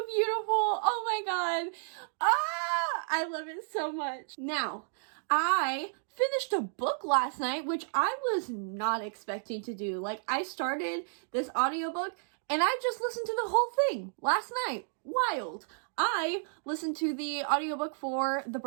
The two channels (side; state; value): left; silent; digital silence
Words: beautiful. Oh my god. I love it so much. Now, I finished a book last night, which I was not expecting to do. Like, I started this audiobook and I just listened to the whole thing last night. Wild. I listened to the audiobook for The